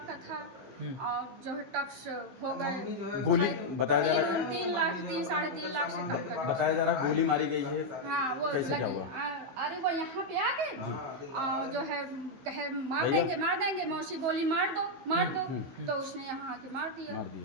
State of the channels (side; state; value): left; late; 15 ms